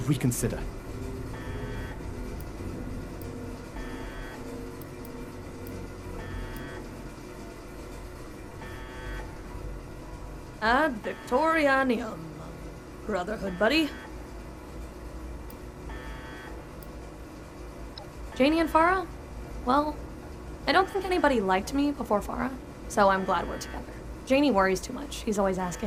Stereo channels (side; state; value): both; identical; correlation 1.00